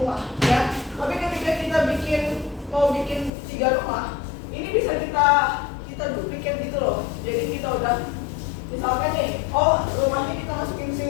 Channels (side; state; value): right; drops out; at 3.3 s